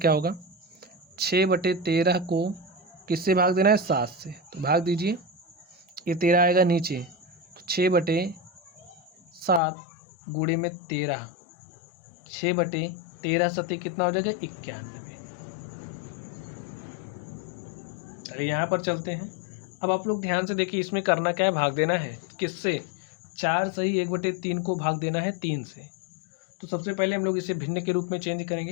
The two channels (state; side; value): drops out; right; at 9.6 s